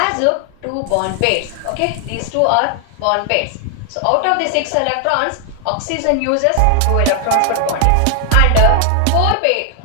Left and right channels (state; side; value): different; both; correlation 0.00